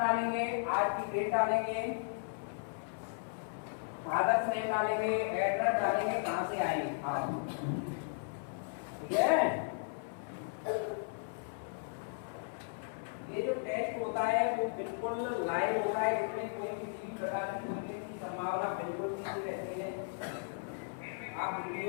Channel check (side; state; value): right; silent; 54 dB below the other